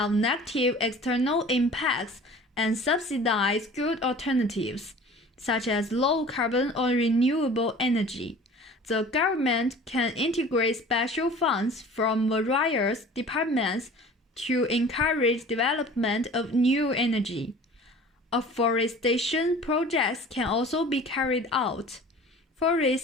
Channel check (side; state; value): both; normal; correlation 0.44